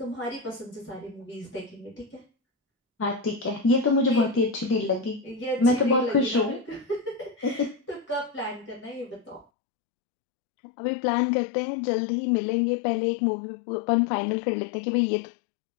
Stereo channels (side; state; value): right; drops out; at 9.5 s